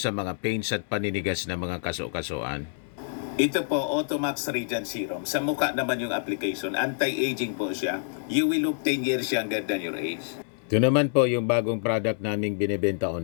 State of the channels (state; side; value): silent; right; digital silence